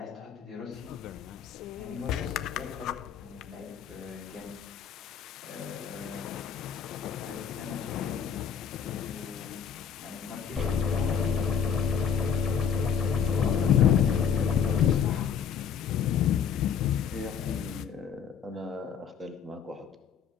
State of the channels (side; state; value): right; quieter; 7.5 dB